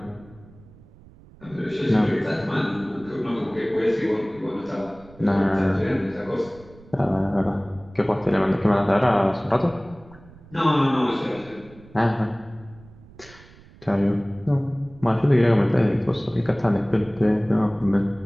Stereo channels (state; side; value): noise; right; rumble, 23 dB below the sound